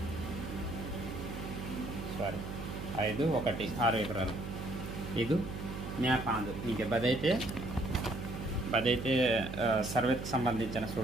6 ఎకరాలు. ఇది మ్యాప్ ఆందు ఇంకే బదైతే సర్వేకి సంబంధించిన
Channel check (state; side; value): noise; right; hum, 7 dB below the sound